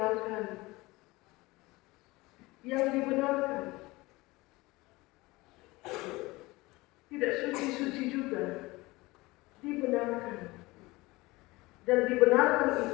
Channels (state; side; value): quieter; right; 21.5 dB